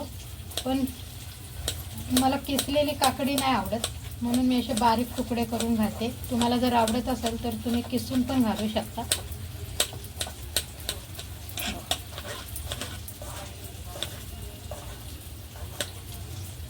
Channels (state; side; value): identical; both; correlation 1.00